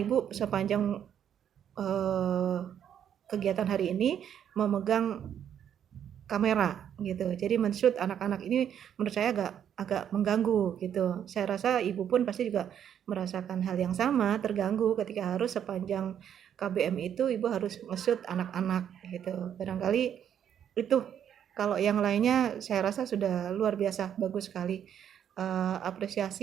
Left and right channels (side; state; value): left; quieter; 9.2 dB